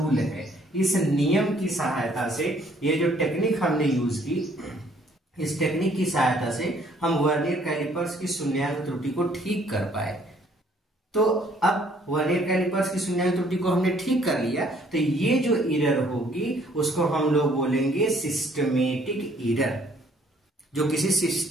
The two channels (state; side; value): normal; both; correlation 0.62